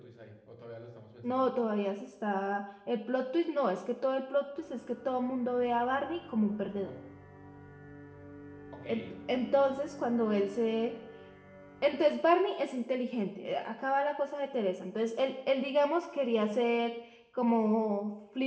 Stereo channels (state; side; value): identical; both; correlation 1.00